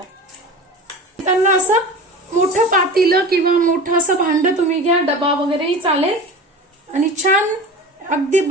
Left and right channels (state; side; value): normal; both; correlation 0.33